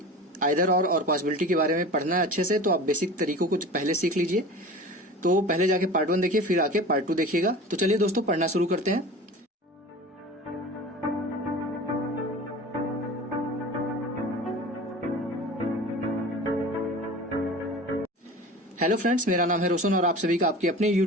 आइदर और पॉसिबिलिटी के बारे में पढ़ना है अच्छे से, तो आप बेसिक तरीकों को पहले सीख लीजिए। तो पहले जाके पार्ट 1 देखिए, फिर आके पार्ट 2 देखिएगा। तो चलिए दोस्तों पढ़ना शुरू करते हैं। हेलो फ्रेंड्स, मेरा नाम है रोशन और आप सभी का आपके अपने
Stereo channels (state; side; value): normal; both; correlation 0.36